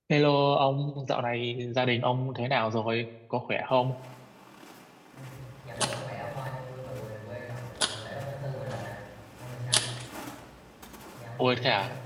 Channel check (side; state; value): both; identical; correlation 1.00